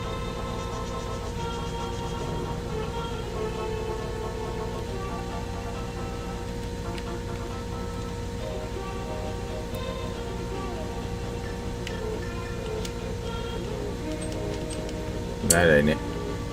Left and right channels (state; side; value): identical; both; correlation 1.00